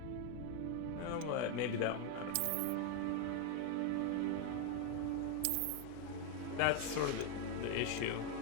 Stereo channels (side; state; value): both; different; correlation 0.01